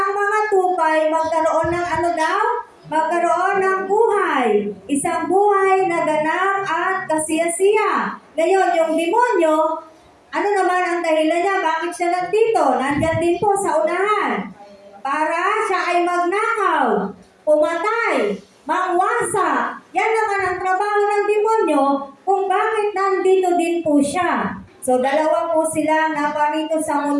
mga tupay magkaroon ng ano daw? Magkaroon ng buhay. Isang buhay na ganap at kasiyasiya. Ngayon, yung demonyo, ano naman ang dahilan niya? Bakit siya nandito? Nandyan din po sa unahan. Para siya ay magnakaw, pumatay, mangwasa. Yan naman ang trabaho ng demonyo kung bakit nandito din po siya. So, dalawa po silang naparito sa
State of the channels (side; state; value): both; identical; correlation 1.00